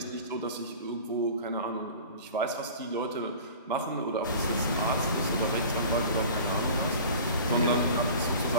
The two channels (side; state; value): both; inverted; correlation -0.40